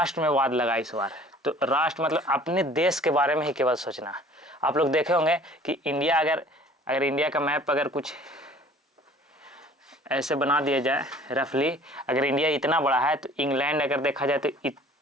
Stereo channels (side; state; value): both; normal; correlation 0.50